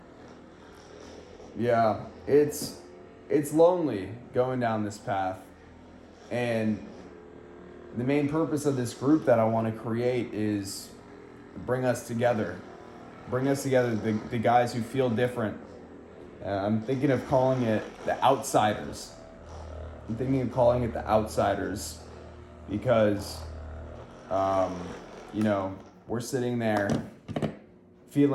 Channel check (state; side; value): identical; both; correlation 1.00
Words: yeah, it's lonely going down this path, and the main purpose of this group that I want to create is bring us together, the guys who feel different. I'm thinking of calling it the Outsiders. Because, you know, we're sitting there